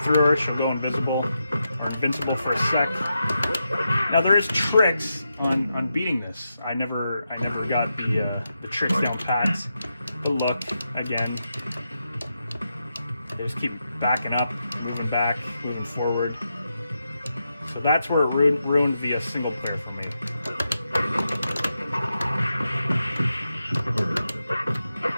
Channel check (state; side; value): inverted; both; correlation -0.86